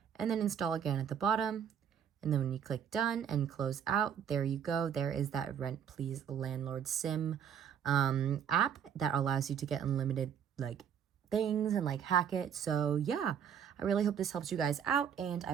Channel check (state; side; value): quieter; left; 8.3 dB